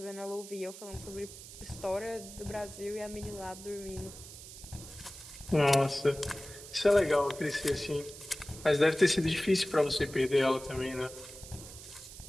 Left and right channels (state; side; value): noise; right; hiss, 14 dB below the sound